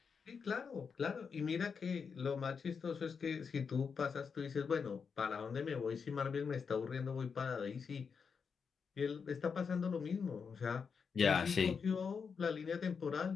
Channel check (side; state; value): right; quieter; 5.9 dB